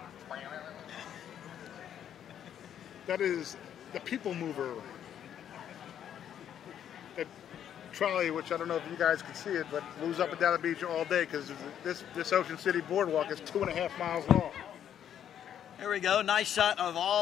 That is the people mover. That trolley, which I don't know if you guys can see it, but moves up and down the beach all day because this Ocean City boardwalk is 2.5 miles long. There we go. Nice shot of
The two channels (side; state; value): right; quieter; 9.7 dB